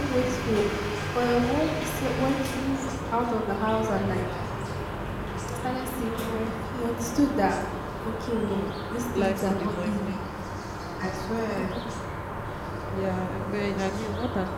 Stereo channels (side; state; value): both; identical; correlation 1.00